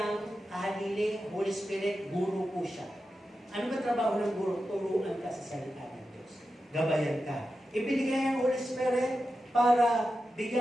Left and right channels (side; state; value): both; normal; correlation 0.91